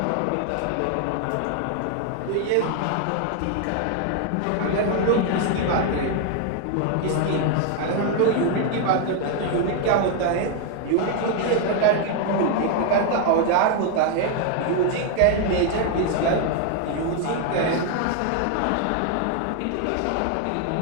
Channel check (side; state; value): both; different; correlation 0.00